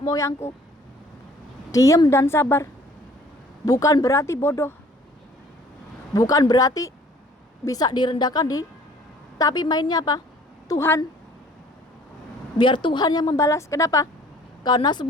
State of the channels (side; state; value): both; normal; correlation 0.54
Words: Diem dan sabar. Bukan berarti bodoh, bukan berarti bisa direndahkan tapi mainnya apa? Tuhan. Biar Tuhan yang membalas. Kenapa? Karena